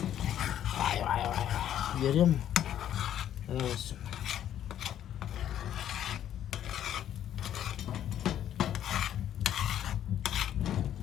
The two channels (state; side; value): quieter; right; 10.8 dB